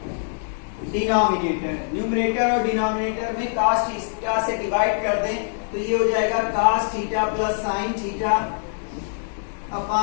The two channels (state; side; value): silent; right; digital silence